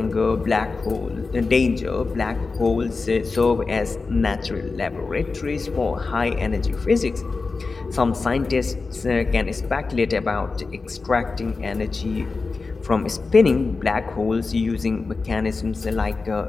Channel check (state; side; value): quieter; right; 4.1 dB